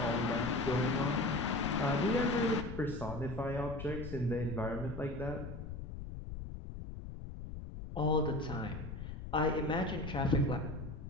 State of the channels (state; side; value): noise; left; rumble, 9 dB below the sound